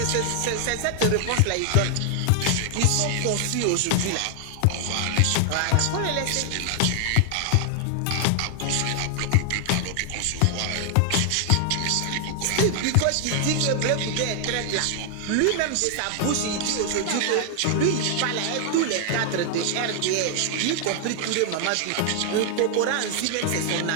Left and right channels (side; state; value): both; different; correlation 0.00